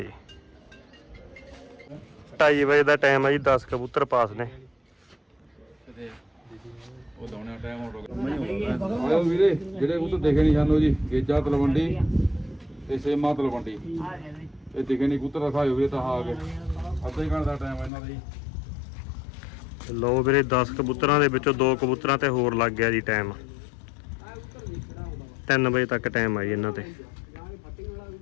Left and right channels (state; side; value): drops out; right; at 17.9 s